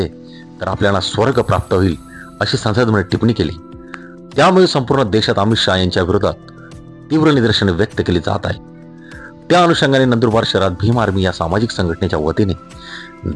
तर आपल्याला स्वर्ग प्राप्त होईल अशी संसदेमध्ये टिप्पणी केली। त्यामुळे संपूर्ण देशात अमित शाह यांच्या विरोधात तीव्र निदर्शने व्यक्त केली जात आहे। त्या अनुषंगाने नंदुरबार शहरात भीम आर्मी या सामाजिक संघटनेच्या वतीने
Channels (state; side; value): identical; both; correlation 1.00